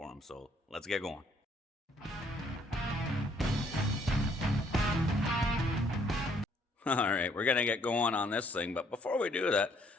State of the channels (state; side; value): normal; both; correlation 0.65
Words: him. So let's get going. All right, we're gonna get going on this thing, but before we do that,